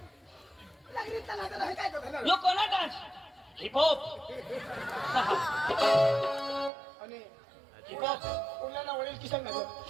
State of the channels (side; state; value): left; drops out; at 6.7 s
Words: यो कोणा डान्स हिपहॉप आणि हिपहॉप उरल्याला वडील किसन